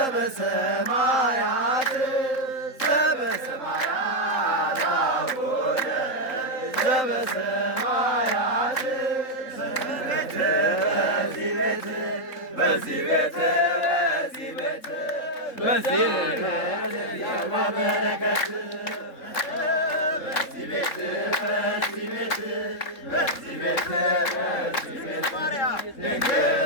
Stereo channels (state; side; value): late; right; 3.7 ms